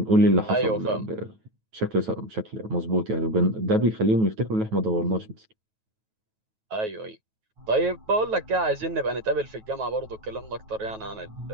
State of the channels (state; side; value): late; left; 9.2 ms